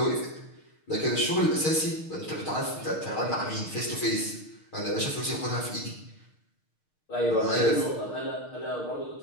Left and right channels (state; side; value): late; right; 6.5 ms